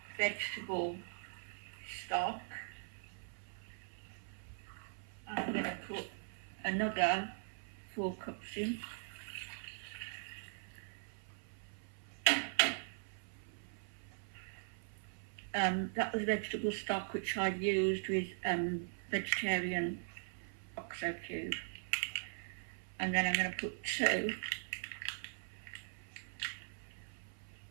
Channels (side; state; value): left; silent; 51 dB below the other